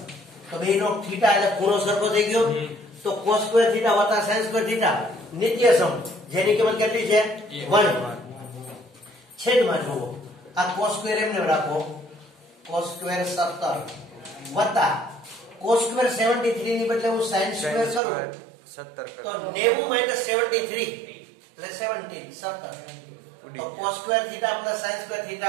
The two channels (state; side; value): drops out; left; at 18.0 s